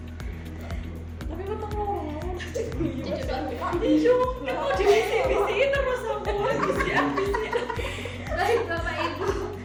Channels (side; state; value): both; identical; correlation 1.00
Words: Tapi betul ngomong. Iya, mau divisi terus aku visi. Baik Bapak Ibu.